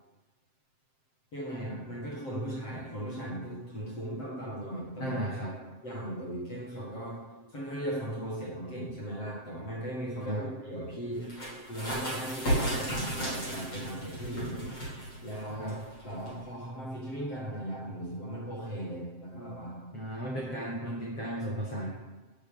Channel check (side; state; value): right; late; 7.6 ms